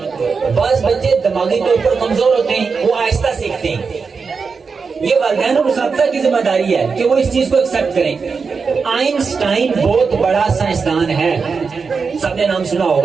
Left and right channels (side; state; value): left; quieter; 5.1 dB